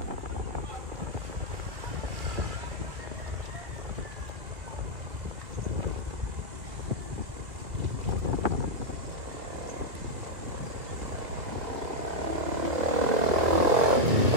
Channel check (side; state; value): left; late; 2.2 ms